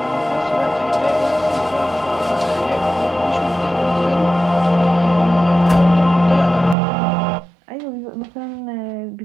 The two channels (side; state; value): left; drops out; at 6.8 s